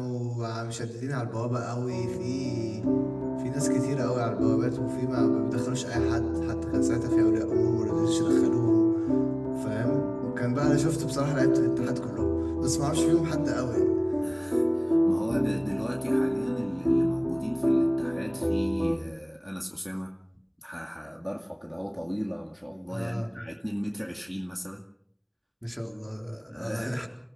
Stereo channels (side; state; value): both; identical; correlation 1.00